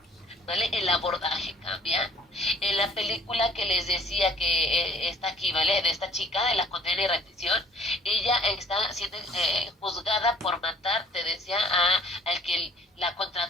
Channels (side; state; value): both; normal; correlation 0.55